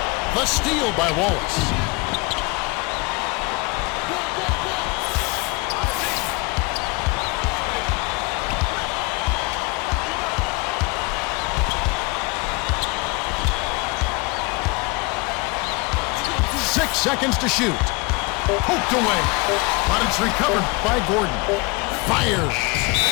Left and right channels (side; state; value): right; quieter; 27.0 dB